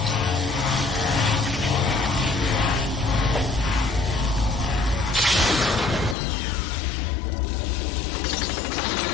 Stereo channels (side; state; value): right; drops out; at 6.2 s